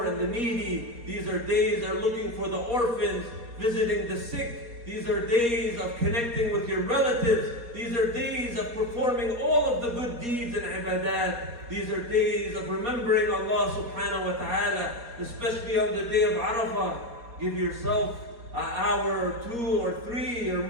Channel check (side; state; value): left; late; 4.2 ms